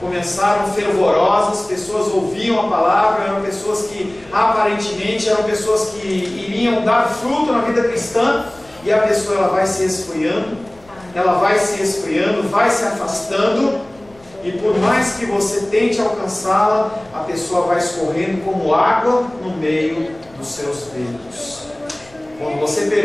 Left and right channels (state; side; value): noise; left; rumble, 27 dB below the sound